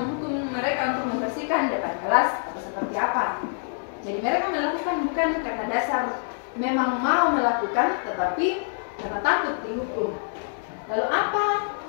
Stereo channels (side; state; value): right; silent; digital silence